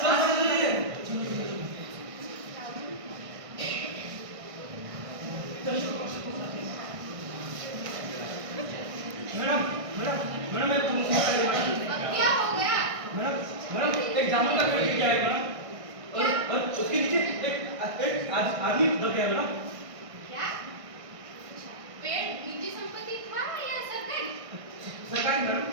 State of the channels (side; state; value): left; late; 1.6 ms